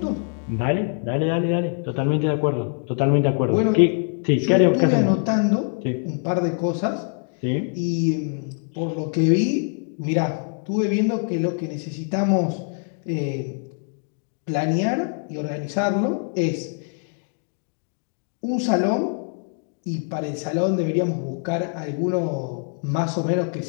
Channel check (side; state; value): right; silent; 58 dB below the other